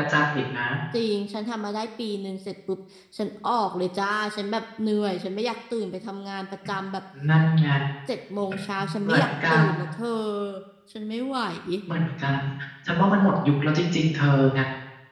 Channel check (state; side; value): identical; both; correlation 1.00